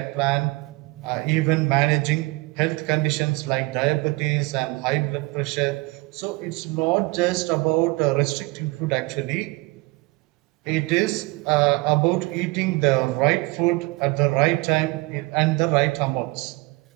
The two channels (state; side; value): quieter; left; 24.3 dB